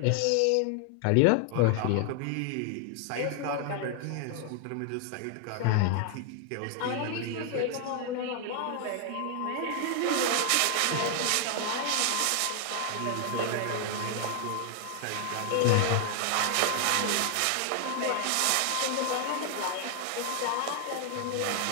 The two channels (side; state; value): both; different; correlation 0.00